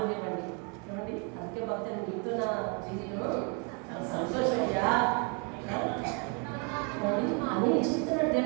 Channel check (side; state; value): left; quieter; 34.6 dB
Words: ఏమండి? అందుకే భక్తులు నీతో నా జీవితం సంతోషమయ్యా అని చెప్తున్నాడు.